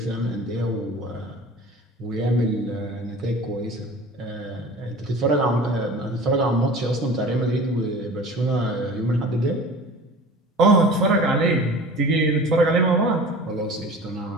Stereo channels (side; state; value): both; normal; correlation 0.40